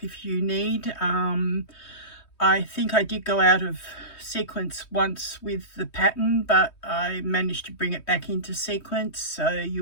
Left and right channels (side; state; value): right; late; 3.2 ms